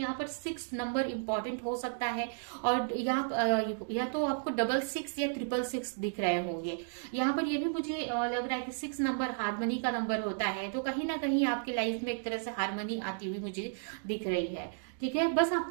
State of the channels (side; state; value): left; silent; digital silence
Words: पर 6 नंबर इंपॉर्टेंट हो सकता है, और या तो आपको 66 या 666 दिख रहे होंगे। यहाँ पर ये भी मुझे लग रहा है कि 6 नंबर हारमोनी का नंबर होता है, तो कहीं ना कहीं आपकी लाइफ में एक तरह से हारमोनी आती हुई मुझे दिख रही है। ठीक है, बस